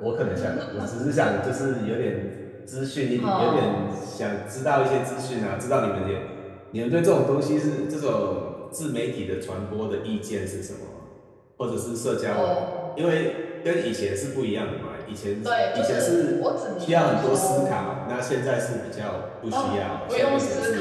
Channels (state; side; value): identical; both; correlation 1.00